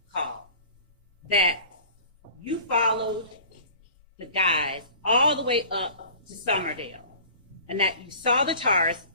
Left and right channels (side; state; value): both; inverted; correlation -0.44